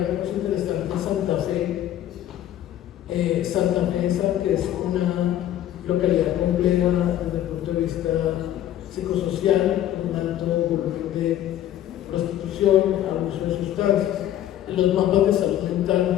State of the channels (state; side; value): quieter; right; 12.1 dB